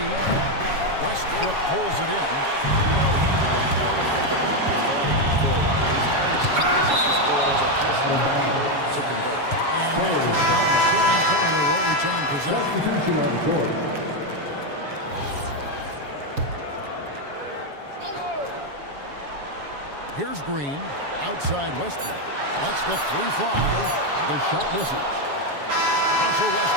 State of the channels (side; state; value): left; late; 7.2 ms